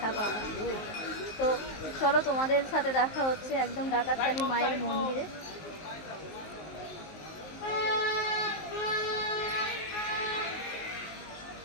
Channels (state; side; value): late; right; 19 ms